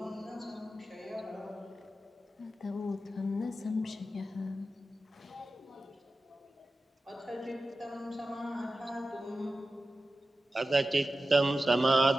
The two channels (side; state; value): both; normal; correlation 0.93